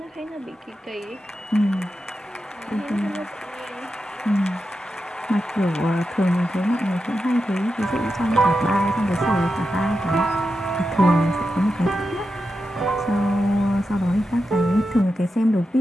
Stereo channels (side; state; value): both; normal; correlation 0.89